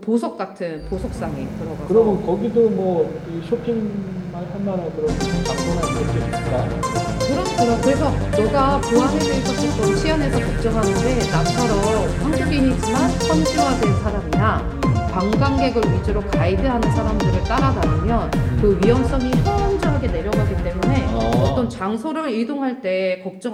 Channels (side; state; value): both; identical; correlation 1.00